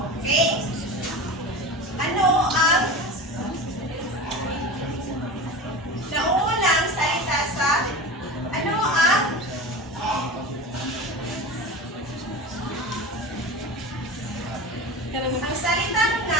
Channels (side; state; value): both; normal; correlation 0.30